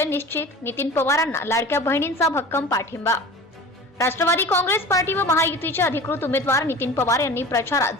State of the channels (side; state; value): both; normal; correlation 0.38